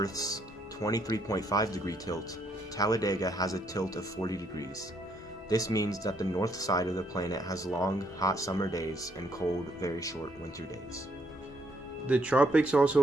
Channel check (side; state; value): both; normal; correlation 0.72